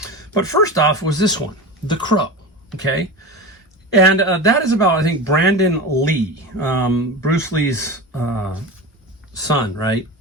But first off was this one, The Crow. Okay. And that is about, I think, Brandon Lee, Bruce Lee's son, right?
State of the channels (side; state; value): both; normal; correlation 0.27